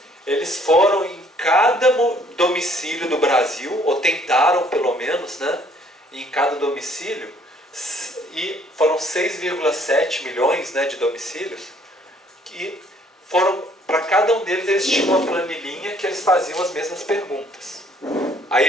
Eles foram em cada domicílio do Brasil, ou tentaram pelo menos, né? Em cada domicílio, e foram 6,7 milhões, né, de domicílios, que foram, para cada um deles eles tinham uma planilhinha que eles faziam as mesmas perguntas. Aí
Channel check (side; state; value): both; normal; correlation 0.61